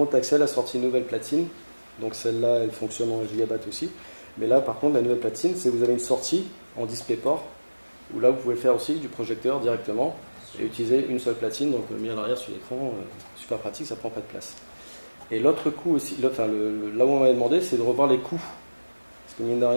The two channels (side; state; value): both; inverted; correlation -1.00